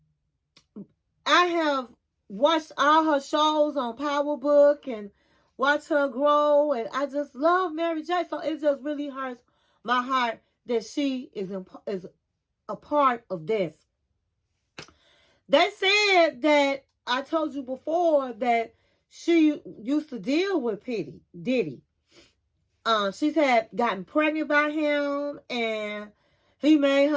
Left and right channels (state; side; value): identical; both; correlation 1.00